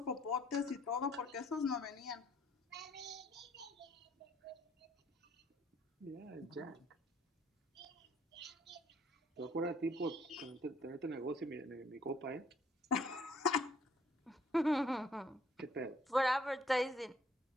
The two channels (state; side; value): normal; both; correlation 0.62